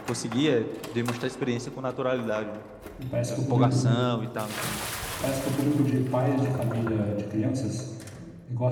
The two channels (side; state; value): both; identical; correlation 1.00